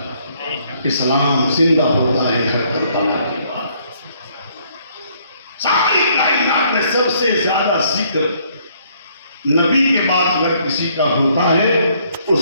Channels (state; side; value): inverted; both; correlation -0.66